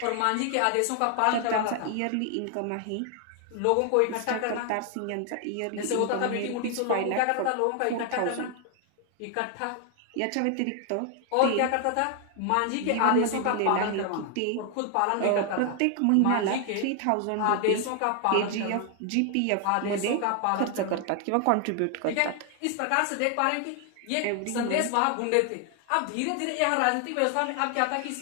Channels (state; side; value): different; both; correlation 0.00